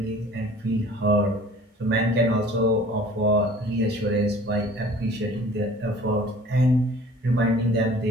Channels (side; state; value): both; normal; correlation 0.48